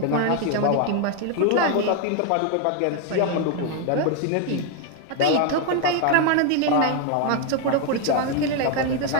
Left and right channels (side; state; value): both; different; correlation 0.01